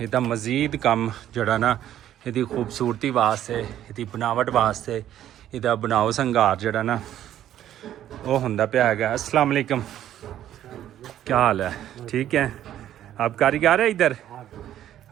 ਮਜ਼ੀਦ ਕੰਮ ਜਿਹੜਾ ਨਾ ਇਹਦੀ ਖੂਬਸੂਰਤੀ ਵਾਸਤੇ ਇਹਦੀ ਬਣਾਵਟ ਵਾਸਤੇ ਇਹਦਾ ਬਣਾਓ ਸੰਘਾਰ ਜਿਹੜਾ ਨਾ ਉਹ ਹੁੰਦਾ ਪਿਆ ਹੈਗਾ अस्सलाम वालेकुम क्या हाल है ठीक है आप कारीगर है इधर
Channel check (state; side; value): quieter; left; 11.7 dB